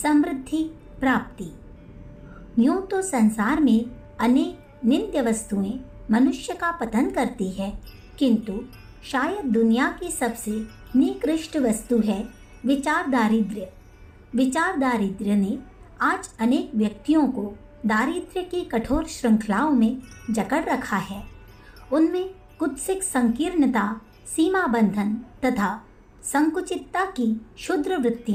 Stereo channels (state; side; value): identical; both; correlation 1.00